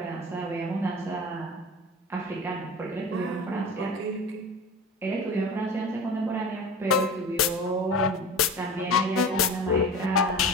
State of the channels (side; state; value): both; normal; correlation 0.33